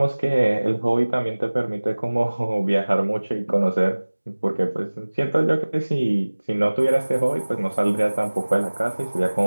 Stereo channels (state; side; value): inverted; both; correlation -1.00